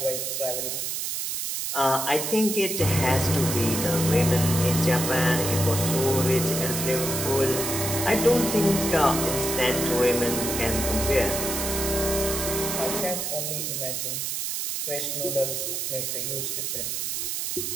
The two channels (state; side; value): noise; right; hiss, 2 dB below the sound